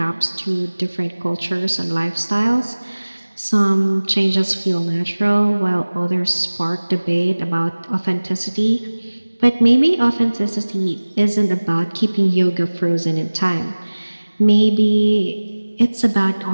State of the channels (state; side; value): inverted; both; correlation -1.00